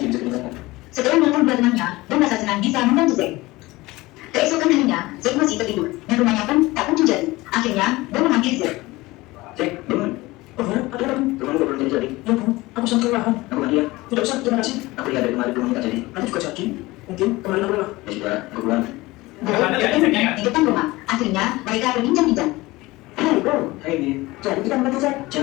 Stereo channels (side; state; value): right; quieter; 20.4 dB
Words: bisa didengarkan. Setelah menelpon dua temannya, Bu merasa senang bisa membantu Z. Keesokan harinya, Z masih tertidur dan rumahnya pun tak kunjung jadi. Akhirnya, Bu memanggil Z. Cek, bangun. Oh ya, ada apa? Rumahmu belum jadi. Ya Bu, aku sangat kelelahan. Aku mandi ya. Tidak usah, terima kasih. Aku lihat dari kemarin belum kita jadi. Nanti juga jadi. Mungkin kemarin aku lelah. Ya sudah, aku pulang. Bu bertemu di depan rumah. Akhirnya, mereka berbincang-bincang. Hai Bu, Hai, Bi. jadi kita membantu Z.